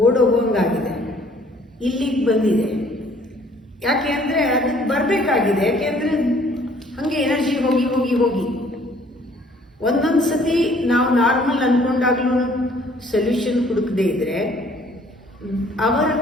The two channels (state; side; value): normal; both; correlation 0.58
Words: ಓಡೋಗೋಂಗಾಗಿದೆ, ಇಲ್ಲಿಗೆ ಬಂದಿದೆ. ಯಾಕೆ ಅಂದರೆ ಅದಕ್ಕೆ ಬರಬೇಕಾಗಿದೆ. ಯಾಕೆ ಅಂದರೆ ಹಾಗೆ ಎನರ್ಜಿ ಹೋಗಿ ಹೋಗಿ ಹೋಗಿ ಒಂದೊಂದು ಸತಿ ನಾವು ನಾರ್ಮಲ್ ಅಂದ್ಕೊಂಡಾಗ್ಲೂ ಸೊಲ್ಯೂಷನ್ ಹುಡುಕದೇ ಇದ್ದರೆ ಅವರ